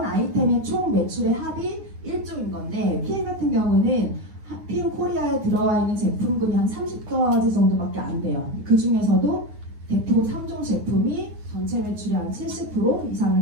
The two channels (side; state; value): left; late; 9.5 ms